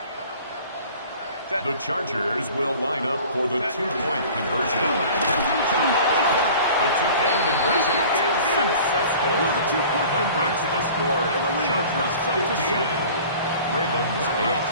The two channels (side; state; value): both; inverted; correlation -0.45